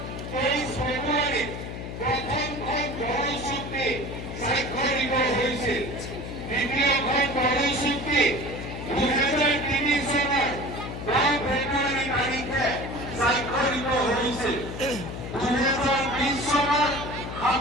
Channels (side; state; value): left; noise; hum, 7 dB below the sound